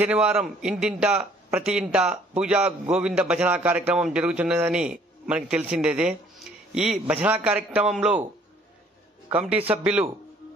ఇంటింటా ప్రతి ఇంట పూజా గోవింద భజన కార్యక్రమం జరుగుతున్నదని మనకి తెలిసిందేదే. ఈ భజన కార్యక్రమంలో కమిటీ సభ్యులు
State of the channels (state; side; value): normal; both; correlation 0.59